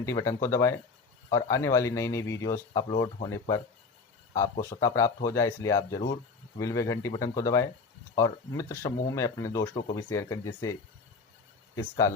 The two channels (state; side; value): quieter; right; 4.5 dB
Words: बटन को दबाएं और आने वाली नई नई वीडियोस अपलोड होने पर आपको स्वतः प्राप्त हो जाए, इसलिए आप ज़रूर बिल व घंटी बटन को दबाएं और मित्र समूह में अपने दोस्तों को भी शेयर करें जिससे इसका